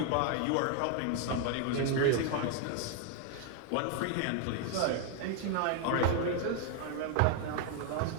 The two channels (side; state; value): both; different; correlation 0.00